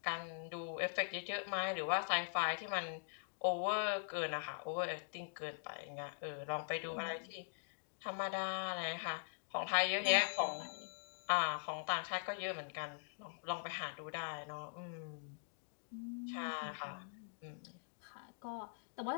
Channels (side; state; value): right; silent; digital silence